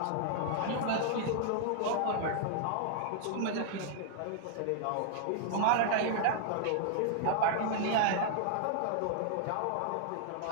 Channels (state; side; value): different; both; correlation -0.01